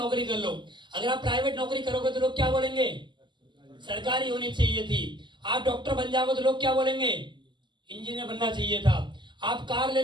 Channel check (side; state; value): left; late; 0.22 ms